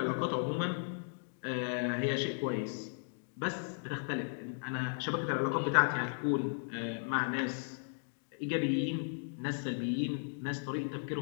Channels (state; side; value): silent; right; digital silence